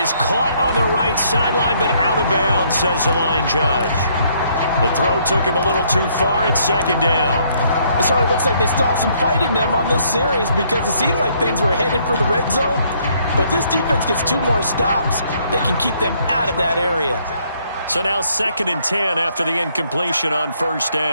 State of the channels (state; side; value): inverted; both; correlation -0.67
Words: caught on the right sideline, but out of bounds, says the line judge. The throw took him a little too far. It's second down. It sort of looks like they still have some fight in them on this series because it seemed like things were headed for the red zone. But this defense gets 2 more stops. They can keep them out of that area. So now 2nd and 10 after the incompletion on first